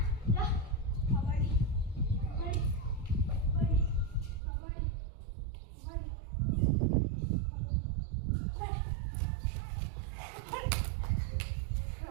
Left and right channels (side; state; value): left; drops out; at 4.4 s